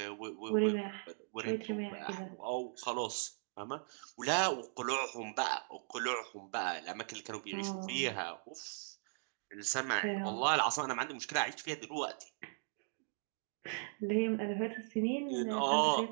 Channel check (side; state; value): left; silent; digital silence